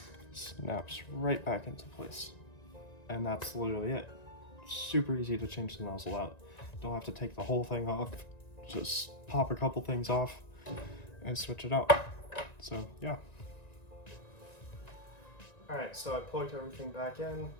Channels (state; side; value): late; right; 1.9 ms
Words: snaps right back into place. And that's literally it. Super easy to change the nozzle out. Don't have to take the whole thing off. Just pop a couple things off and switch it out. So yeah. All right, so I plugged everything back in,